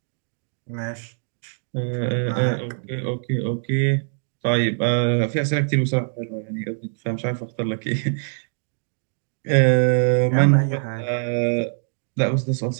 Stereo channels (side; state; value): left; silent; digital silence